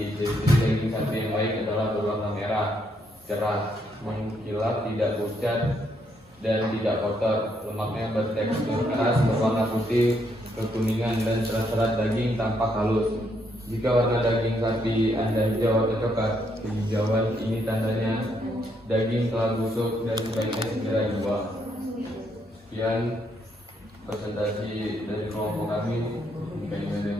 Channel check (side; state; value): both; normal; correlation 0.74